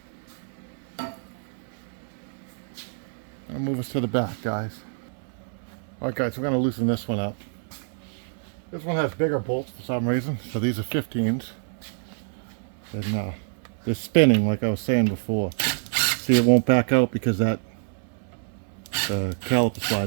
I'll move us to the back, guys. All right, guys, we're going to loosen this one up. This one has bigger bolts for some reason, so these are 15s. And they're spinning, like I was saying before. See, it won't back out because that caliper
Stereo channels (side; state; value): left; silent; digital silence